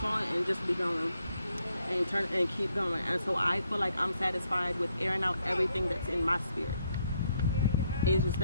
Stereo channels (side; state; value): both; inverted; correlation -0.74